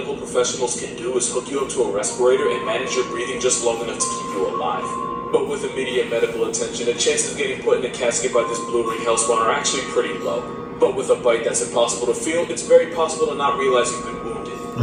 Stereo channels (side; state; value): both; identical; correlation 1.00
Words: professionals can do is hook you up to a respirator and manage your breathing just long enough to keep you alive. But with immediate medical attention, the chances of getting put in a casket by this blue ring hellspawn are actually pretty low. But with a bite that's impossible to feel, it's very possible to not realize you've been wounded.